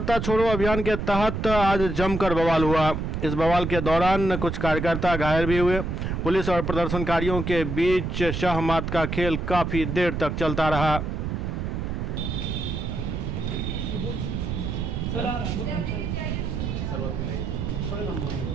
छोड़ो अभियान के तहत आज जमकर बवाल हुआ। इस बवाल के दौरान कुछ कार्यकर्ता घायल भी हुए। पुलिस और प्रदर्शनकारियों के बीच शाह मात का खेल काफी देर तक चलता रहा।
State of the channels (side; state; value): right; noise; rumble, 3 dB below the sound